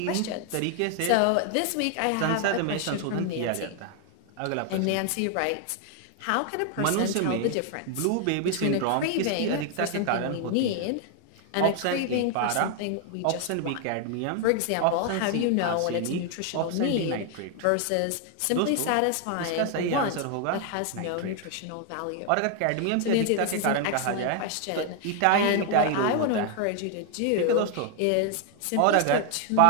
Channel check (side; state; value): both; different; correlation 0.00